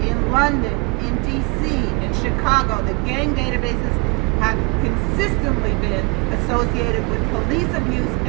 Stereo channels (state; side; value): quieter; left; 30.6 dB